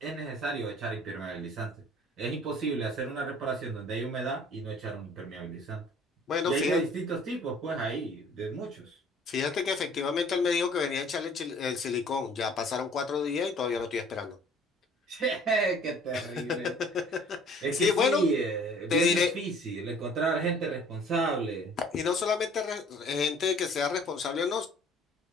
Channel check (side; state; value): both; normal; correlation 0.53